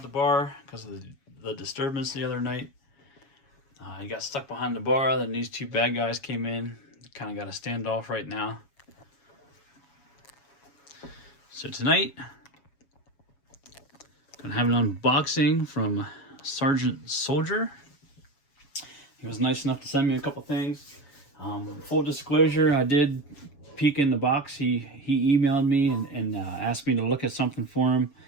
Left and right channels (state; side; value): late; right; 7.2 ms